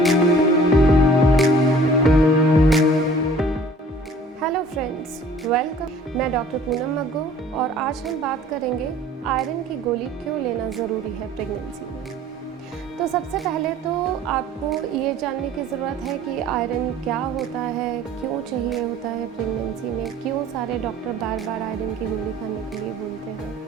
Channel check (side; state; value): both; normal; correlation 0.50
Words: Hello friends, welcome. मैं डॉक्टर पूनम मग्गो और आज हम बात करेंगे आयरन की गोली क्यों लेना ज़रूरी है प्रेगनेंसी में। तो सबसे पहले तो आपको ये जानने की ज़रूरत है कि आयरन क्या होता है, क्यों चाहिए होता है प्रेगनेंसी में, क्यों सारे डॉक्टर बार बार आयरन की गोली खाने के लिए बोलते